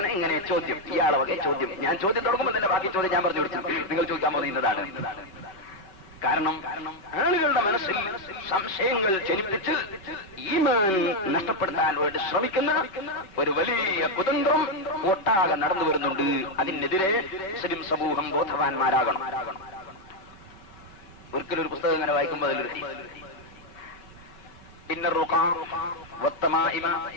ഇങ്ങനെ ചോദ്യം, ഇയാളെ വകെ ചോദ്യം. ഞാൻ ചോദ്യം തുടങ്ങുമ്പോൾ തന്നെ ബാക്കി ചോദ്യം ഞാൻ പറഞ്ഞു കൊടുത്തു. നിങ്ങൾ ചോദിക്കാൻ പോകുന്നതാണ്. കാരണം ആളുകളുടെ മനസ്സിൽ സംശയങ്ങൾ ജനിപ്പിച്ച് ഈമാൻ നഷ്ടപ്പെടുത്താൻ വേണ്ടി ശ്രമിക്കുന്ന ഒരു വലിയ കുതന്ത്രം ഒട്ടാകെ നടന്നു വരുന്നുണ്ട്. അതിനെതിരെ മുസ്ലിം സമൂഹം ബോധവാന്മാരാകണം. ഒരിക്കലും ഒരു പുസ്തകം ഇങ്ങനെ വായിക്കുമ്പോൾ അതിലൊരു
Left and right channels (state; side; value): late; right; 5.3 ms